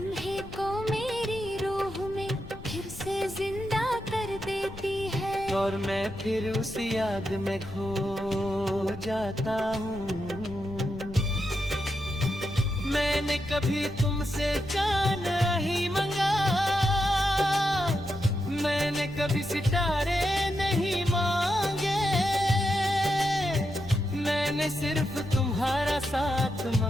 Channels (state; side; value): noise; left; rumble, 15 dB below the sound